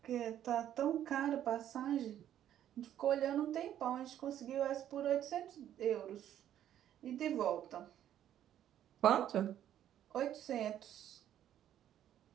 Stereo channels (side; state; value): left; quieter; 11.1 dB